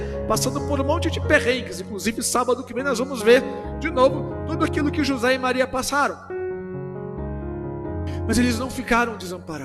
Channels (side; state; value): both; identical; correlation 1.00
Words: passando por um monte de perrengues. Inclusive sábado que vem nós vamos ver de novo tudo aquilo que José e Maria passaram. Mas eles não ficaram